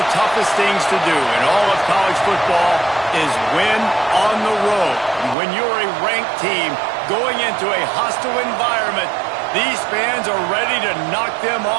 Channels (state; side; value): drops out; left; at 5.4 s